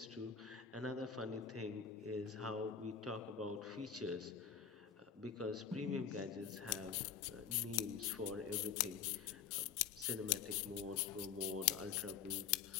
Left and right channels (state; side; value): quieter; right; 7.3 dB